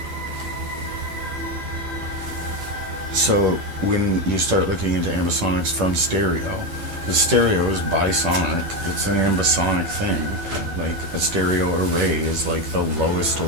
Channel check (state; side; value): late; left; 10 ms